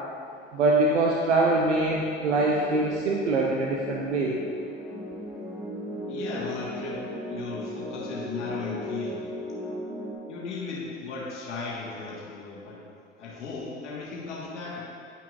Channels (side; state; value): both; normal; correlation 0.34